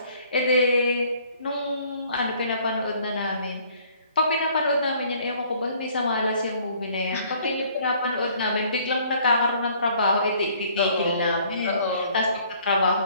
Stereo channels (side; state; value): both; inverted; correlation -0.58